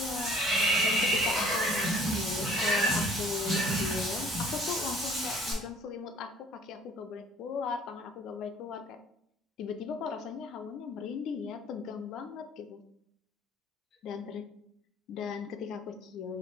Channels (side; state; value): both; normal; correlation 0.54